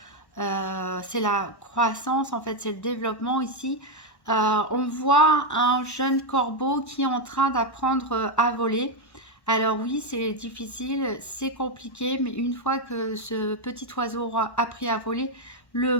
C'est la croissance, en fait c'est le développement ici. On voit un jeune corbeau qui est en train d'apprendre à voler. Alors oui, c'est difficile, c'est compliqué, mais une fois que ce petit oiseau aura appris à voler, le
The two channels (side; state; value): right; late; 1.1 ms